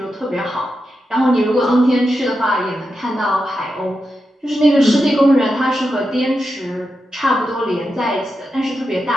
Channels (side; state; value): both; normal; correlation 0.88